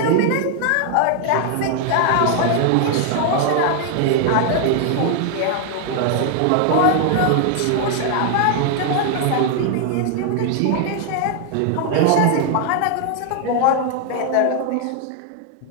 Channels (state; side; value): different; both; correlation 0.00